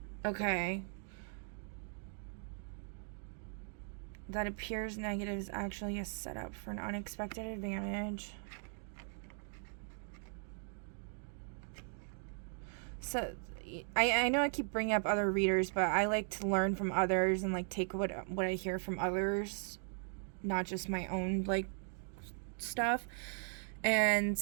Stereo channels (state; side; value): silent; left; 52 dB below the other